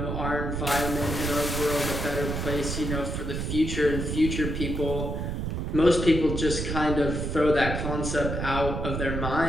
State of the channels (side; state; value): right; noise; rumble, 3 dB below the sound